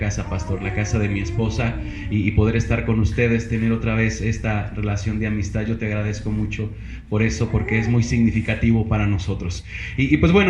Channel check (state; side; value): identical; both; correlation 1.00